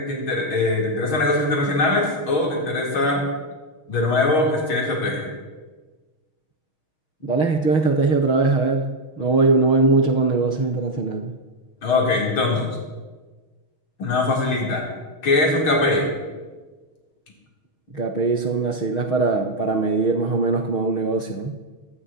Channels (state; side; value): late; right; 6.3 ms